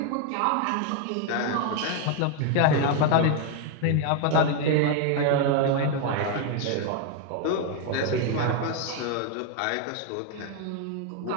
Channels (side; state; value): both; different; correlation 0.01